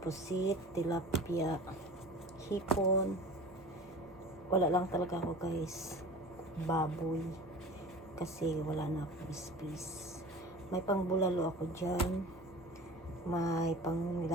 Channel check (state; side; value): normal; both; correlation 0.38